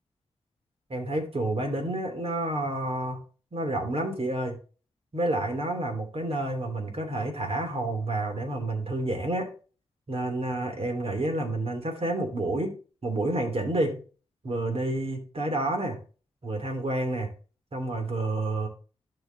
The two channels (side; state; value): both; normal; correlation 0.64